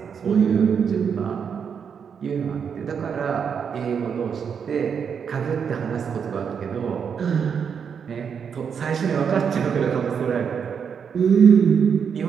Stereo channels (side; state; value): left; quieter; 6.9 dB